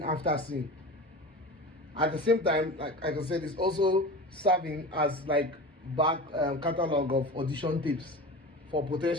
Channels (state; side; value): normal; both; correlation 0.31